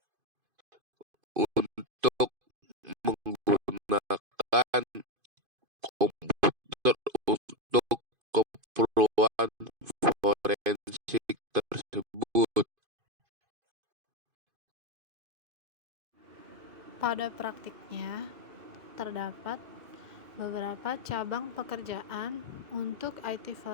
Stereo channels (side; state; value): left; late; 2.5 ms